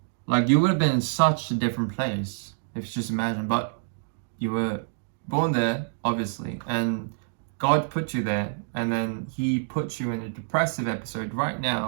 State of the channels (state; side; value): silent; left; digital silence